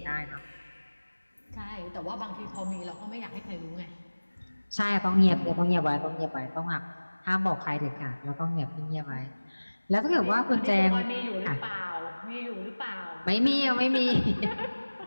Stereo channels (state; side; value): inverted; both; correlation -1.00